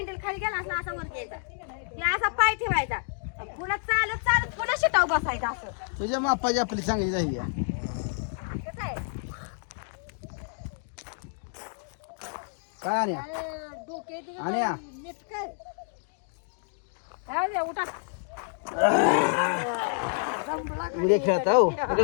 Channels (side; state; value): right; silent; digital silence